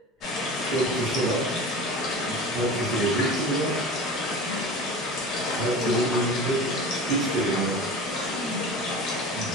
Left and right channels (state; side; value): normal; both; correlation 0.35